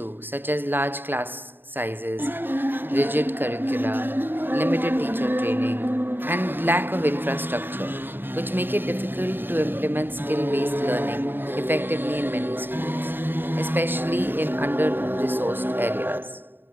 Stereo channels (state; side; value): late; left; 0.096 ms